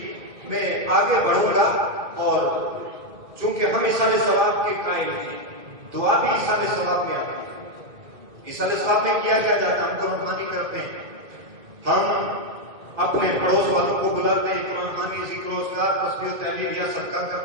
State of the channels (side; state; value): left; late; 2.1 ms